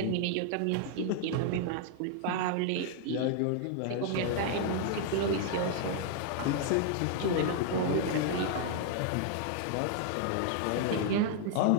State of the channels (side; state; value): both; different; correlation 0.00